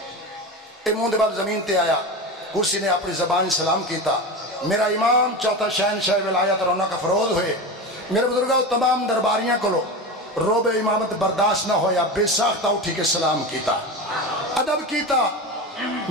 اے مون دے بال زمین تے آیا، کرسی نے اپنی زبانی سلام کیتا، میرا امام چوتھا شہنشاہ ولایت رونق افروز ہوئے۔ میرے بزرگاں تمام درباریاں کلو روب امامت برداشت نہ ہویا، بے ساختہ اٹھی کے سلام کیتا، ادب کیتا۔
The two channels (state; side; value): normal; both; correlation 0.24